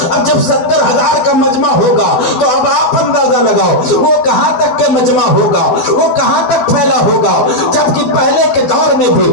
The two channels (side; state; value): right; late; 12 ms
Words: اب جب 70,000 کا مجمع ہوگا تو اب آپ اندازہ لگاؤ وہ کہاں تک کے مجمع ہوگا، وہ کہاں تک پھیلا ہوگا۔ جبکہ پہلے کے دور میں بھی